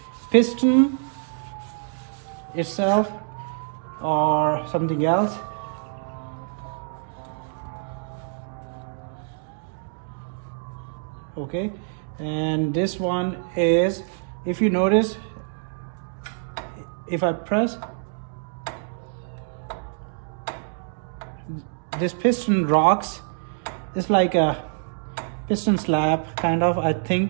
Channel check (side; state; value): left; silent; digital silence